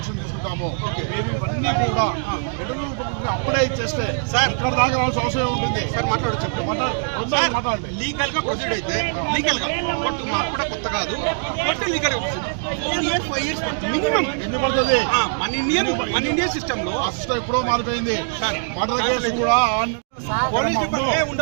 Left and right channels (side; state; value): left; silent; digital silence